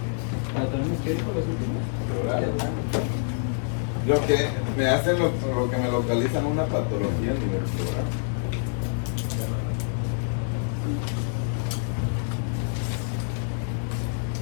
¿Patrones qué dijo los últimos? Pleurales. Lo que me hacen, lo que me localizan una patología a nivel pleural.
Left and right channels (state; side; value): silent; right; digital silence